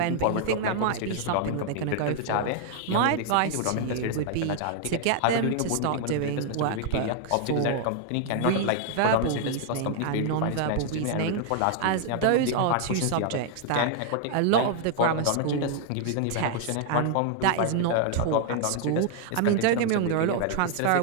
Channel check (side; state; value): both; different; correlation 0.00